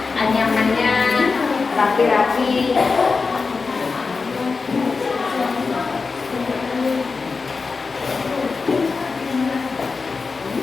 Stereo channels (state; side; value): quieter; right; 4.5 dB